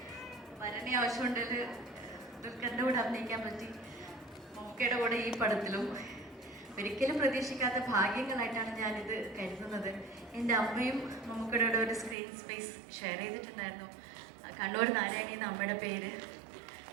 വരണേ ആവശ്യമുണ്ടെങ്കിൽ ദുൽഖറിൻ്റെ കൂടെ അഭിനയിക്കാൻ പറ്റി, മമ്മൂക്കയുടെ കൂടെ ഈ പടത്തിലും. ഒരിക്കലും പ്രതീക്ഷിക്കാത്ത ഭാഗ്യങ്ങളായിട്ടാണ് ഞാനിത് കരുതുന്നത്. എൻ്റെ അമ്മയും മമ്മൂക്കയുടെ കൂടെ ഒരു സ്ക്രീൻ സ്പേസ് ഷെയർ ചെയ്തിട്ടുണ്ടായിരുന്നു. കണ്ണൂർ നാരായണി എന്ന അമ്മയുടെ പേര്.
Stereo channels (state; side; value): drops out; left; at 12.2 s